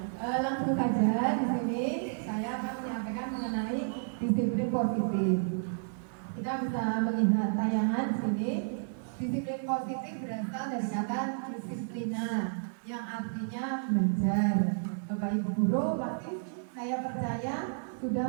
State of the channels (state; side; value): silent; left; digital silence